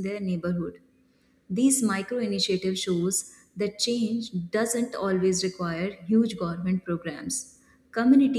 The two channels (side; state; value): both; identical; correlation 1.00